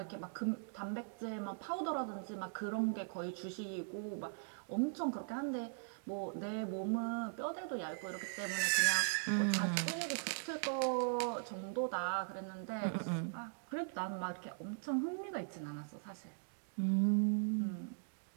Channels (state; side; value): silent; left; digital silence